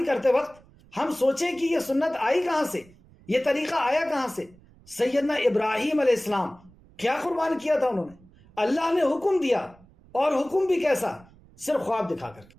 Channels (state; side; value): noise; right; rumble, 26 dB below the sound